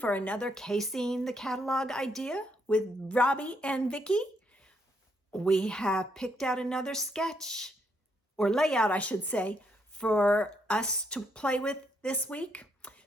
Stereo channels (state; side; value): normal; both; correlation 0.75